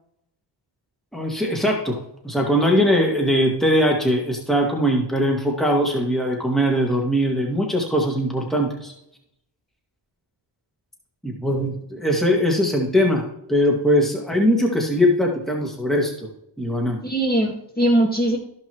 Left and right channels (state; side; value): normal; both; correlation 0.47